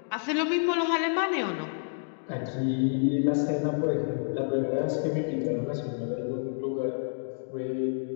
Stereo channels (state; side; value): silent; right; digital silence